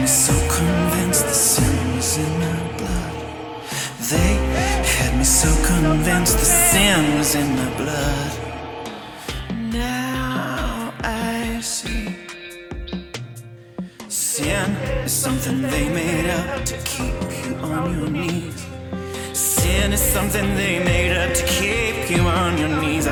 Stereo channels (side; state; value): both; identical; correlation 1.00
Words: so convinced the sin was in my blood. They had me so convinced the sin was in my blood. Now I see sin is something they made up to keep you on your knees. Sin is something they made up to keep you on your knees.